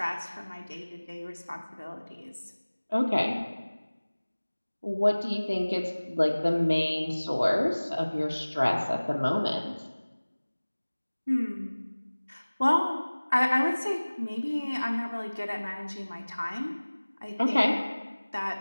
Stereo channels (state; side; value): inverted; both; correlation -1.00